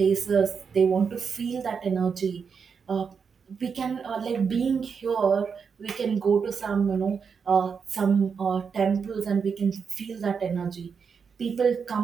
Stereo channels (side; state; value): left; quieter; 6.1 dB